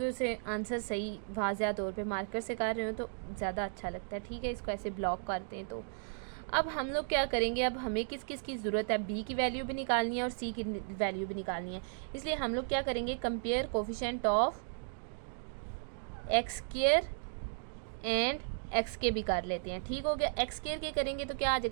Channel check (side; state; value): left; silent; digital silence